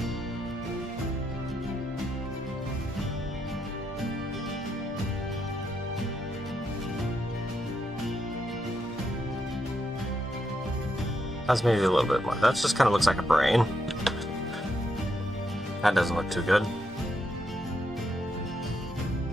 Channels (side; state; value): both; normal; correlation 0.80